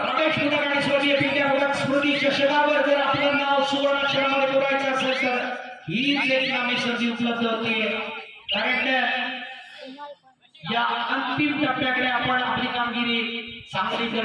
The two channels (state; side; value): identical; both; correlation 1.00